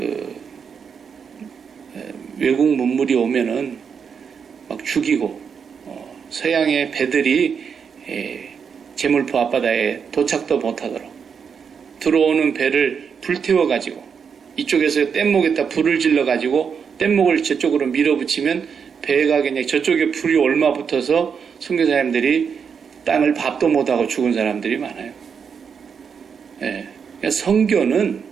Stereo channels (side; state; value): left; quieter; 6.6 dB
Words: 외국 문물이 오면은 막 죽이고 서양의 배들이 제물포 앞바다에 도착도 못하도록 들어오는 배를 불태워가지고 이쪽에서 뗏목에다 불을 질러가지고 뗏목을 저쪽으로 밀어붙이면 배가 그냥 저쪽에 불이 얼마 붙어서 선교사님들이 땅을 밥도 못하고 죽은 사람들이 많아요. 예. 그러니까 선교는